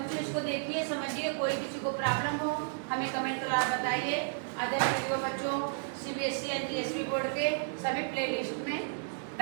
इसको देखिए, समझिए, कोई किसी को प्रॉब्लम हो हमें कमेंट द्वारा बताइए। अदर वीडियो बच्चों सीबीएसई एंड जीएसवी बोर्ड के सभी प्लेलिस्ट में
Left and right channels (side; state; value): left; silent; 56 dB below the other